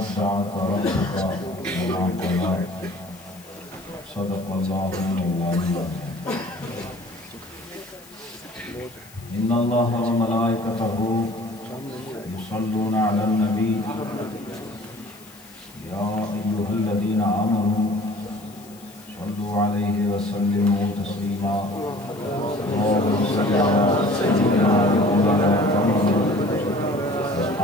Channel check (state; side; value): noise; left; hiss, 23 dB below the sound